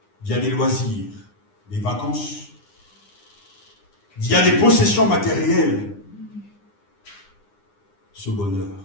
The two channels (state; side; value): late; right; 9.8 ms